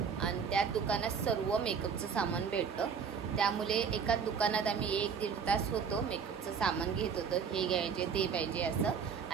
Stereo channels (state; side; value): quieter; left; 6.5 dB